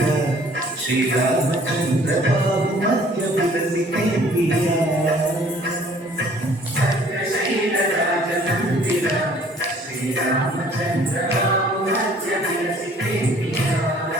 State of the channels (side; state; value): both; normal; correlation 0.56